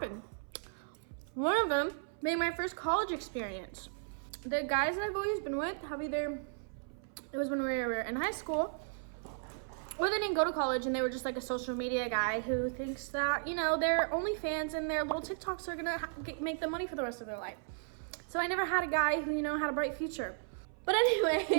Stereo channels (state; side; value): silent; left; 54 dB below the other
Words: One of them made my first college experience. The guys that I've always been with have either, it was when we were in high school, or they didn't go to college and they were just like a social media guy who thinks that, you know, their OnlyFans and their little TikToks are gonna make them money for the rest of their life. So I never had a guy who, you know, had a bright future. But